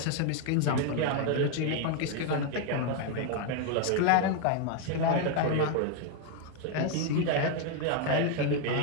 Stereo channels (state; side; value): different; both; correlation 0.01